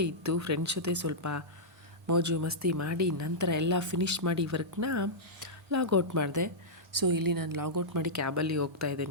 ಇತ್ತು. ಫ್ರೆಂಡ್ಸ್ ಜೊತೆ ಸ್ವಲ್ಪ ಮೋಜು ಮಸ್ತಿ ಮಾಡಿ ನಂತರ ಎಲ್ಲ ಫಿನಿಷ್ ಮಾಡಿ ವರ್ಕ್ನ ಲಾಗೌಟ್ ಮಾಡಿದೆ. ಸೊ ಇಲ್ಲಿ ನಾನು ಲಾಗೌಟ್ ಮಾಡಿ ಕ್ಯಾಬಲ್ಲಿ ಹೋಗ್ತಾ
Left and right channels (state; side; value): normal; both; correlation -0.11